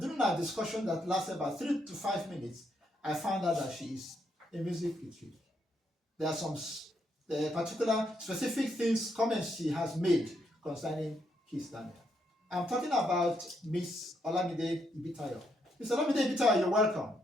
during our discussion that lasted about 3 to 5 minutes, I found out that she is a music critic. There are some the particular specific things, comments she has made concerning Kiss Daniel. I'm talking about Miss Olamide Ibitayo. Miss Olamide Ibitayo, you're welcome.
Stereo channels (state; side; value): normal; both; correlation 0.77